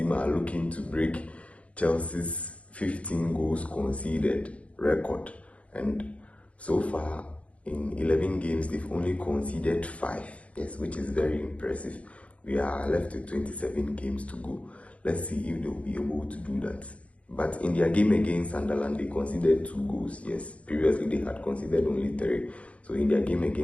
are looking to break Chelsea's 15 goals conceded record. And so far, in 11 games, they've only conceded 5. Yes, which is very impressive. We are left with 27 games to go. Let's see if they'll be able to do that. But in their game against Sunderland, they conceded 2 goals. Yes, previously they had conceded only 3. So in their game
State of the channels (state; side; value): late; right; 0.064 ms